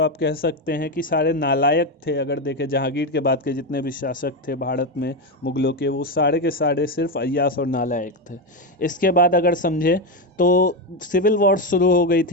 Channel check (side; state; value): both; normal; correlation 0.10